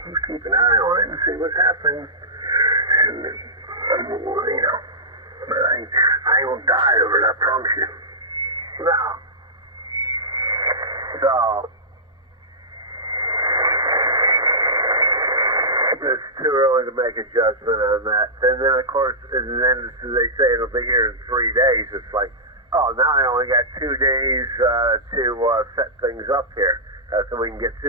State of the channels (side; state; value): both; normal; correlation -0.15